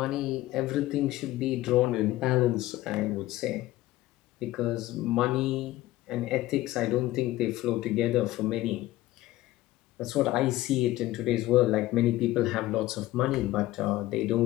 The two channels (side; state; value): right; quieter; 16.5 dB